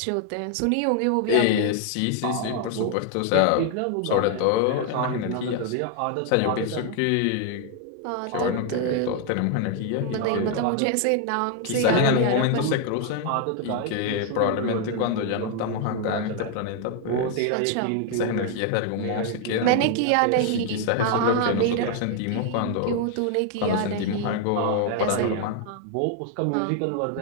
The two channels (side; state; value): both; different; correlation 0.00